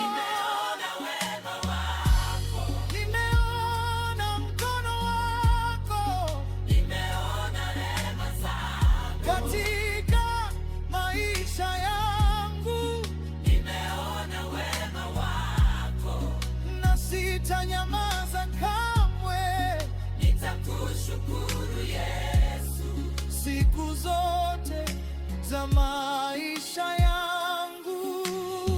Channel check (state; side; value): identical; both; correlation 1.00